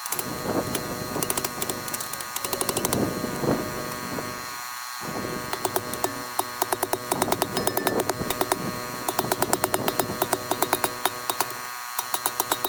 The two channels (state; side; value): identical; both; correlation 1.00